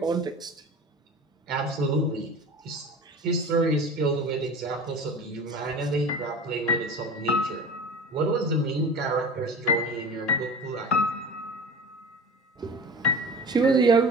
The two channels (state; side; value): normal; both; correlation 0.35